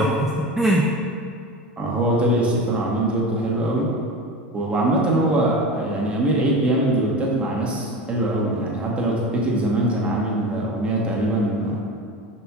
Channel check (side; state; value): both; normal; correlation 0.30